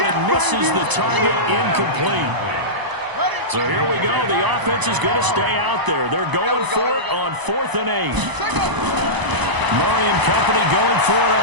it misses the target, incomplete. So here we go. The offense is going to stay out there. They're going for it on 4th and 8. Murray and company going for it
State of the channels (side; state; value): left; late; 1.0 ms